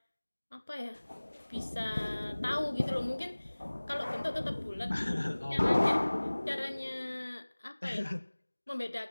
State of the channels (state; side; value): inverted; both; correlation -1.00